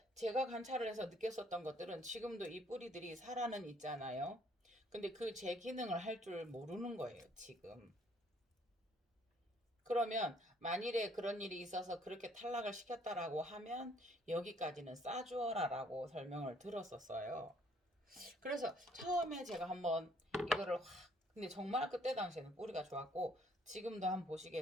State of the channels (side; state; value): both; normal; correlation 0.63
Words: 제가 관찰을 해서 느꼈었던 것들은 지금도 이 뿌리들이 살아는 있잖아요. 근데 그 제 기능을 할 줄 모르는 거예요, 지금. 그러면 만일에 그런 일이 있어서 그렇게 탈락을 시켰다라고 하면 여기까지는 싸주어라라고 설명을 들었었어요. 그래서 처음에 제가 한번 이거를 근데 정말 그때 당시에는 뿌리가 좋았고 지금도 한번